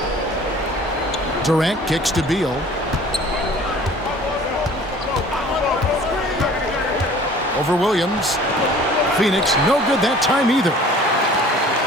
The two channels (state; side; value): normal; both; correlation 0.48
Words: Durant kicks to Beal. Over Williams. Phoenix, no good that time either.